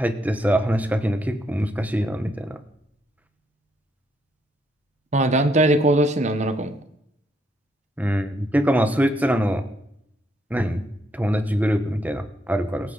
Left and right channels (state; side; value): normal; both; correlation 0.75